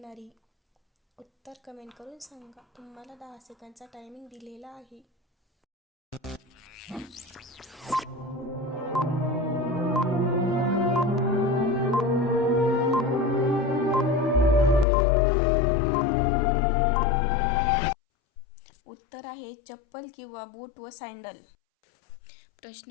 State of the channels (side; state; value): right; drops out; at 14.9 s